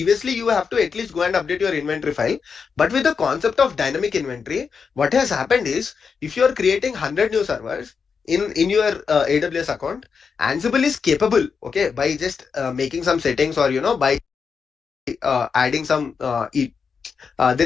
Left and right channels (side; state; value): right; quieter; 5.8 dB